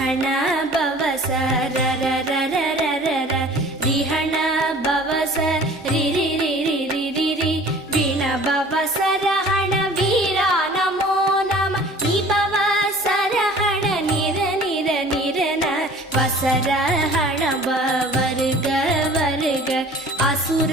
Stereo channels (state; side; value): normal; both; correlation 0.47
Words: ரிஹண பவச ரரரரரரர ரிஹண பவச ரிரிரிரிரிரிரி விண பவச ரஹண வீரா நமோ நம நிபவச ரஹண நிர நிர நிரன வசரஹண வருக வருக